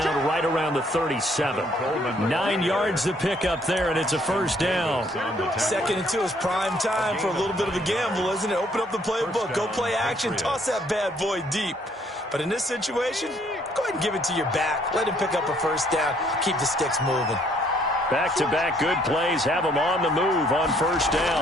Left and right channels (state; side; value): normal; both; correlation 0.65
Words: right around the 37. 9 yards to pick up there, and it's a first down. 2nd and 2 is prime time for a little bit of a gamble, isn't it? Open up the playbook, go play action, toss that bad boy deep. But in this situation, go ahead and give it to your back. Let him pick up a first down. Keep the sticks moving. Back-to-back good plays have them on the move on first